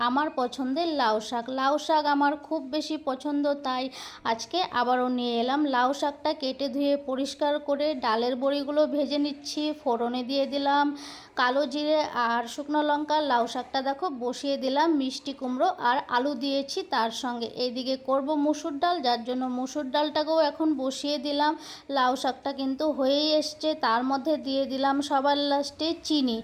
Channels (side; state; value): both; identical; correlation 1.00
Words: আমার পছন্দের লাউ শাক। লাউ শাক আমার খুব বেশি পছন্দ, তাই আজকে আবারও নিয়ে এলাম। লাউ শাকটা কেটে ধুয়ে পরিষ্কার করে ডালের বড়িগুলো ভেজে নিচ্ছি। ফোড়নে দিয়ে দিলাম কালো জিরে আর শুকনো লঙ্কা। লাউ শাকটা দেখো বসিয়ে দিলাম, মিষ্টি কুমড়ো আর আলু দিয়েছি তার সঙ্গে। এইদিকে করব মুসুর ডাল, যার জন্য মুসুর ডালটাকেও এখন বসিয়ে দিলাম। লাউ শাকটা কিন্তু হয়েই এসছে, তার মধ্যে দিয়ে দিলাম সবার লাস্টে চিনি।